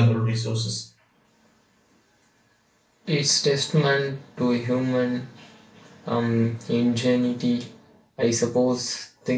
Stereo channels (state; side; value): identical; both; correlation 1.00